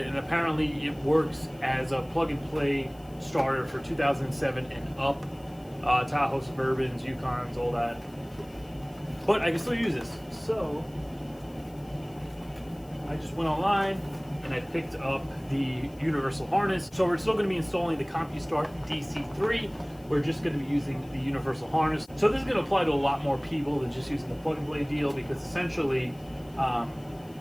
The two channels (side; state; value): left; noise; hiss, 27 dB below the sound